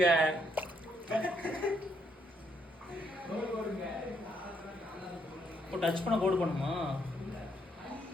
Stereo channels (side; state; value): both; normal; correlation 0.73